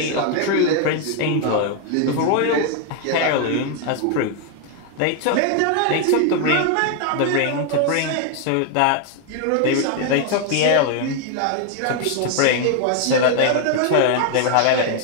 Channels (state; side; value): different; both; correlation 0.01